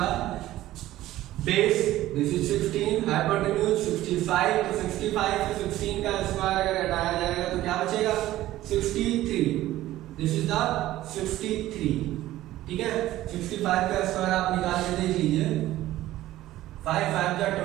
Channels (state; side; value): quieter; left; 15.1 dB